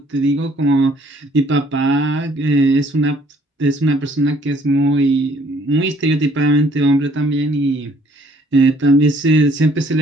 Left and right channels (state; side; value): normal; both; correlation 0.61